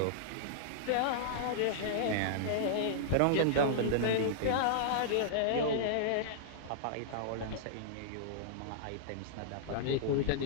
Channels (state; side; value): different; both; correlation -0.02